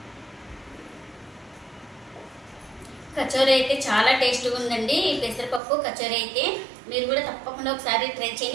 కచోరీ అయితే చాలా టేస్ట్గా ఉందండి. ఈ పెసరపప్పు కచోరీ అయితే మీరు కూడా తప్పకుండా ఒకసారి ట్రై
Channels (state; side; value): drops out; left; at 5.6 s